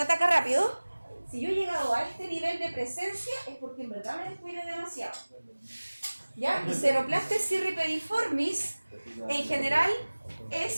ataca rápido. Si yo he llegado a este nivel de presencia, es porque en verdad me descuido demasiado. ¿Ya? Y Ceroplastes cirripediformis, en general,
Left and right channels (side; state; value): both; inverted; correlation -1.00